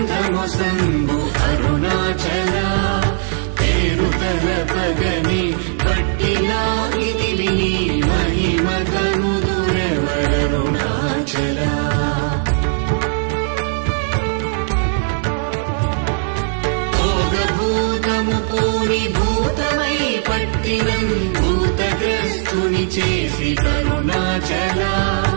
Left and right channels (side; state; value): left; silent; digital silence